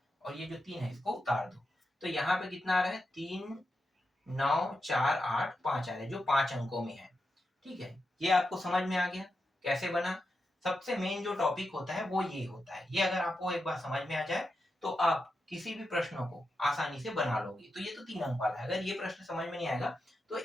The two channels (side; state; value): both; normal; correlation 0.88